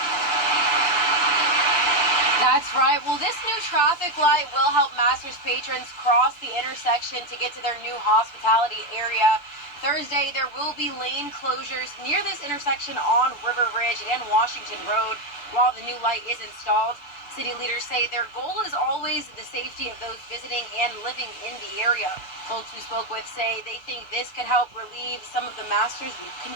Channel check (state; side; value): late; right; 6.9 ms